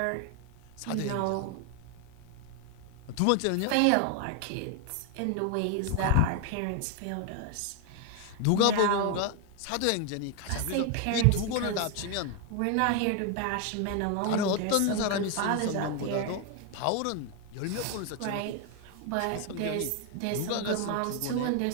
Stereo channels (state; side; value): different; both; correlation 0.01